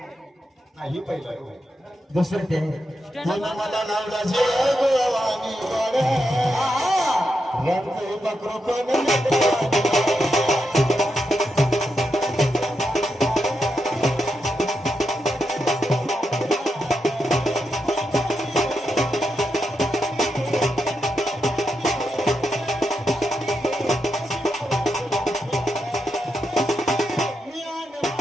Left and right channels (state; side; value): normal; both; correlation 0.85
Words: नाही पहिलं आहे हो. दुसरं ते तुला मला लावला जे गोवानी गोड्या रंग बकरो कोण